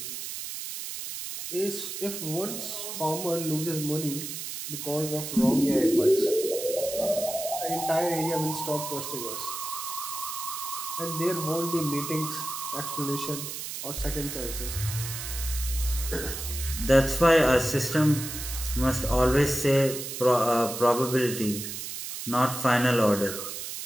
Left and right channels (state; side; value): noise; right; hiss, 7 dB below the sound